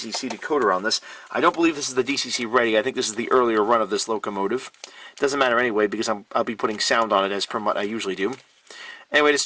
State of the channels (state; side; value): identical; both; correlation 1.00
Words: decoder on this. I don't believe this is the DCC ready. I think this is the earlier run of this locomotive. Doesn't matter anyway because I'll be putting sound on it as per what I usually do. Anyway, to